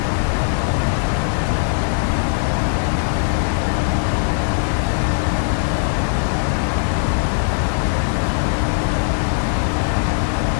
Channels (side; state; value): right; silent; 66 dB below the other